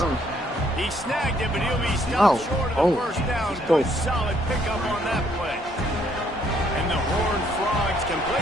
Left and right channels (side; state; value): both; normal; correlation 0.68